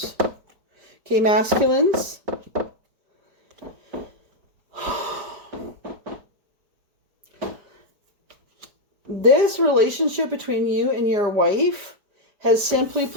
Okay, masculines. This relationship between you and your wife has simply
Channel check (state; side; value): late; left; 4.9 ms